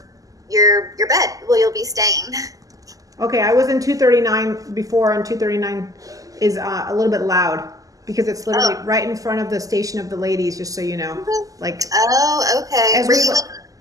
your bed. Well, you'll be staying. Okay, I was in 239 before, and 239 is a little bit loud because it's literally right in front of the station of the ladies. Just so you know, like. Oh, okay. Were you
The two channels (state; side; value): late; left; 0.17 ms